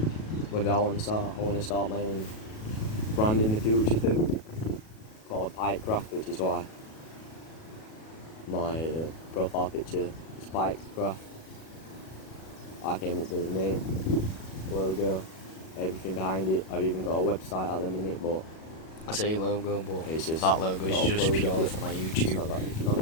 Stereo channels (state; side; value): late; right; 37 ms